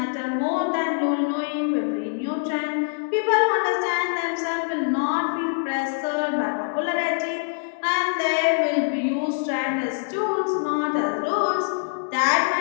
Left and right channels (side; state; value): right; silent; digital silence